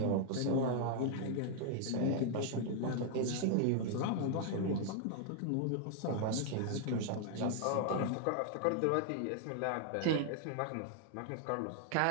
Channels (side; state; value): both; different; correlation 0.00